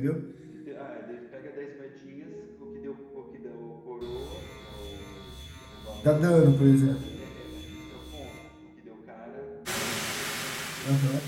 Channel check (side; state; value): both; identical; correlation 1.00